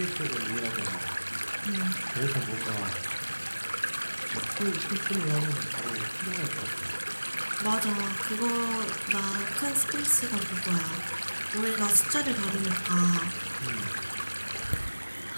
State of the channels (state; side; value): inverted; both; correlation -1.00